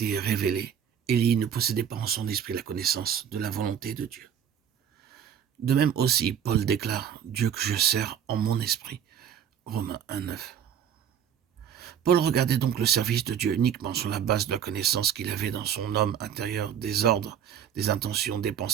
révélée, Élie ne possédait pas en son esprit la connaissance de la volonté de Dieu. De même aussi, Paul déclare « Dieu que je sers en mon esprit » Romains 1:9. Paul regardait donc le service de Dieu uniquement sur la base de la connaissance qu'il avait dans son homme intérieur des ordres, des intentions, des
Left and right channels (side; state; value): left; quieter; 8.8 dB